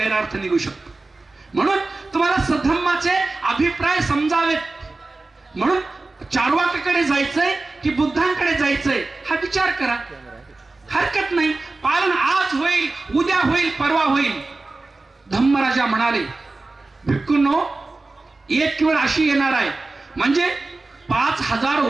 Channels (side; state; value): left; quieter; 3.3 dB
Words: निघू शकतो. म्हणून तुम्हाला सद्धम्माचे अभिप्राय समजावेत. म्हणून चार्वाकाकडे जायचंय की बुद्धांकडे जायचंय हा विचार करा, हरकत नाही. पालन आज होईल, उद्या होईल, परवा होईल. धम्मराजा म्हणाले, भिक्खूंनो, एक वेळ अशी येणार आहे, म्हणजे 5000